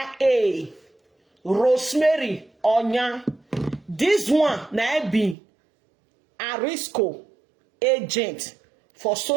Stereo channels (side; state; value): left; drops out; at 5.4 s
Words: Rosemary Onya. This one na be Arisco agent for